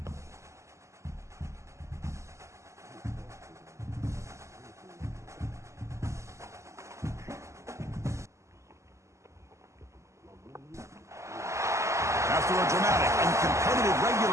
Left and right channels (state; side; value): late; left; 0.14 ms